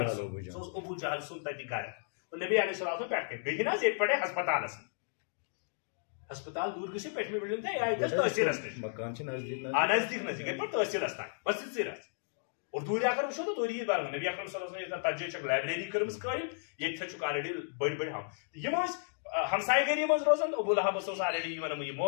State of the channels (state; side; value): silent; right; digital silence